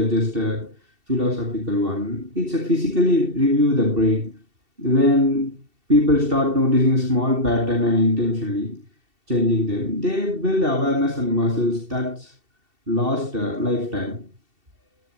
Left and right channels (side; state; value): left; late; 2.7 ms